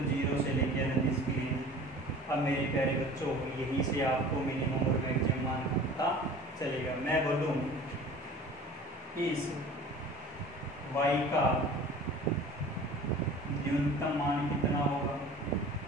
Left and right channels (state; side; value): normal; both; correlation 0.42